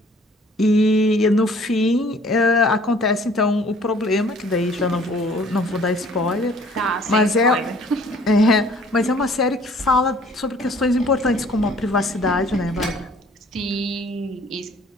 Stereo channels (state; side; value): normal; both; correlation 0.55